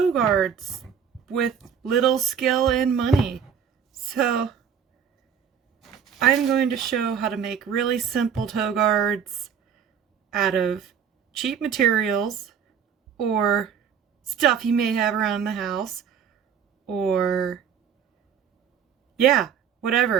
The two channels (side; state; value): left; quieter; 7.6 dB